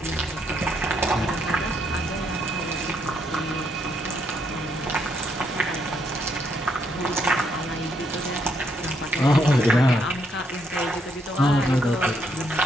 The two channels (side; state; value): both; normal; correlation 0.74